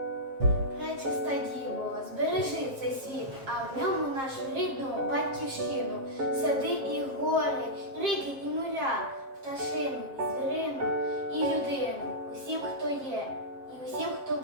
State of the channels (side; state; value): left; late; 7.5 ms